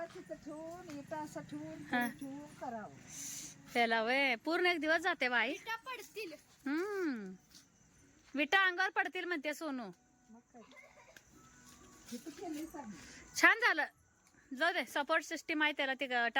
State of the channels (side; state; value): both; identical; correlation 1.00